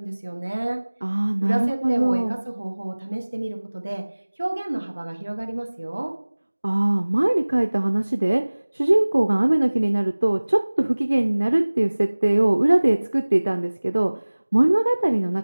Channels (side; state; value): both; inverted; correlation -1.00